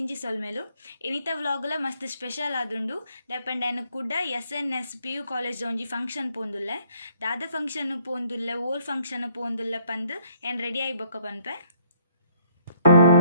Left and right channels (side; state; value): both; inverted; correlation -0.66